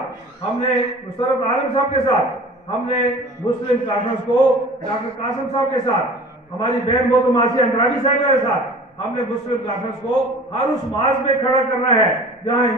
ہم نے مسرت عالم صاحب کے ساتھ، ہم نے مسلم کانفرنس کو ڈاکٹر قاسم صاحب کے ساتھ، ہماری بہن محترمہ آسیہ اندرابی صاحب کے ساتھ، ہم نے مسلم کانفرنس کو ہر اس محاذ میں کھڑا کرنا ہے جہاں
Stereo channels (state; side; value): normal; both; correlation 0.43